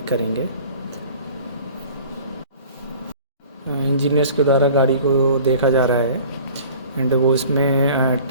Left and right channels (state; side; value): inverted; both; correlation -0.46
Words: करेंगे। इंजीनियर्स के द्वारा गाड़ी को देखा जा रहा है एंड वो इसमें